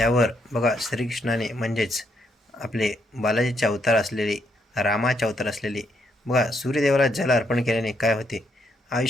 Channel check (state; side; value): normal; both; correlation 0.75